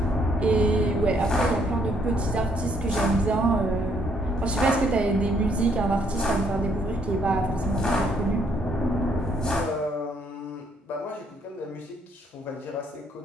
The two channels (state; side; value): normal; both; correlation 0.69